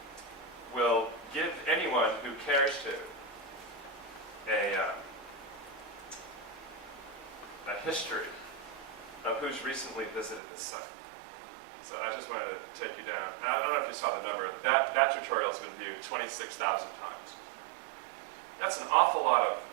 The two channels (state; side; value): drops out; left; at 10.4 s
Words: will give anyone who cares to a history of who's recently visited the site. So I just wanted to take you down. And I don't know if you saw the number. That tutorial has been viewed 26,000 times. That's an awful lot of